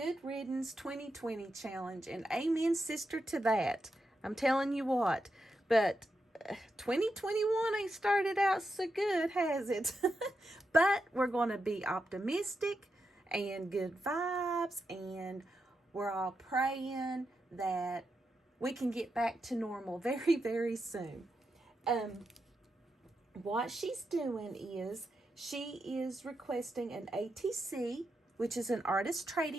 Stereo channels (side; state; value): both; normal; correlation 0.86